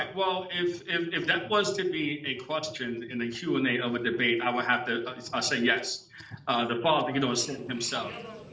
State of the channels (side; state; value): both; identical; correlation 1.00